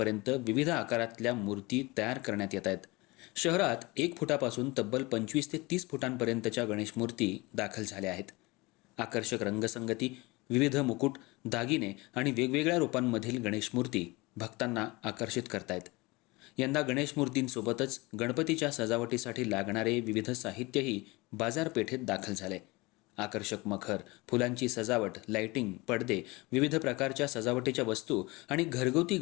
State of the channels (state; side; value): quieter; right; 23.6 dB